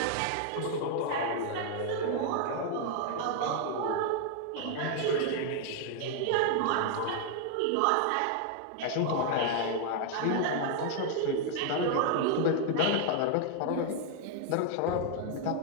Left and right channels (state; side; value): different; both; correlation 0.00